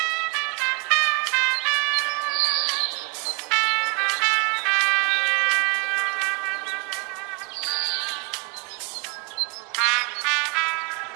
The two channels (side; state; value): left; quieter; 30.2 dB